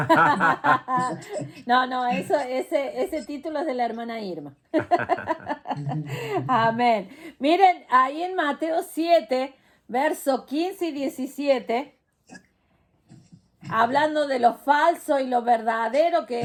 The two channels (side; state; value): both; identical; correlation 1.00